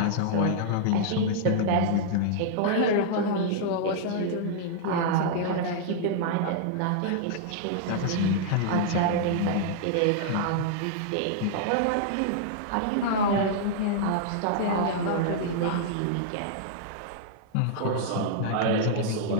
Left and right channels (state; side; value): different; both; correlation -0.01